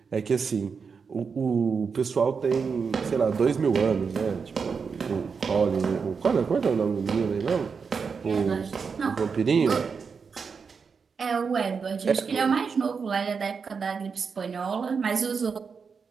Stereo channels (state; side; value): quieter; left; 5.6 dB